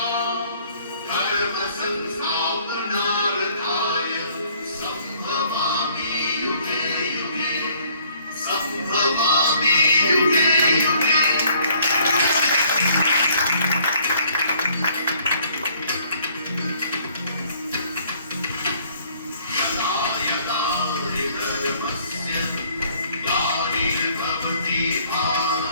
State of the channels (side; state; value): both; inverted; correlation -0.60